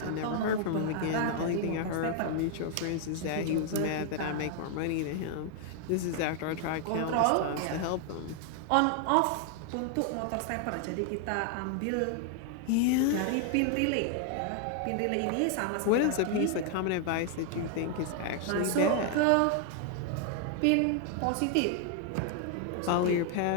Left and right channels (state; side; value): different; both; correlation 0.00